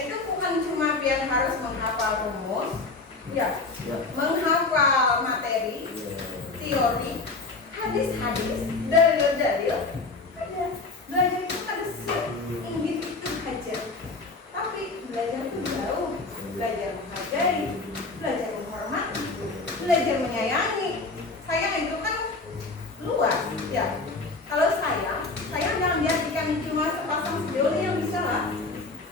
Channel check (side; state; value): right; quieter; 3.7 dB